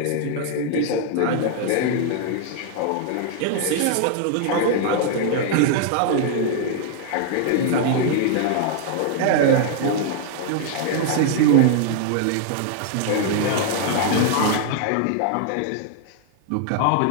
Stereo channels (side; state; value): both; different; correlation 0.00